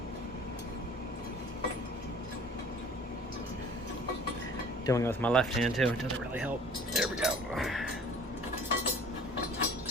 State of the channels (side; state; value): both; normal; correlation 0.48